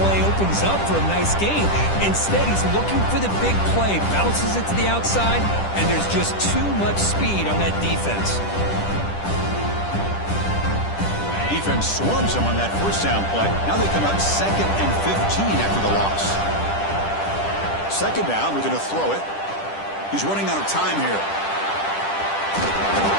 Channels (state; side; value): late; right; 10 ms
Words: opens up for a nice gain. Instead, he's looking for the big play, bounces it to the outside, and there's just too much speed on that defense. Defense swarms him on that first down play. Now they come up 2nd and 15 after the loss. 2nd down, we're going to throw it. He's running out of time here.